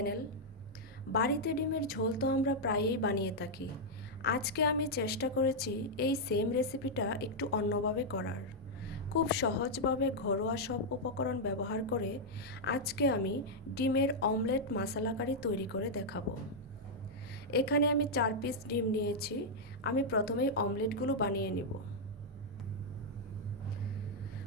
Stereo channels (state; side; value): normal; both; correlation -0.04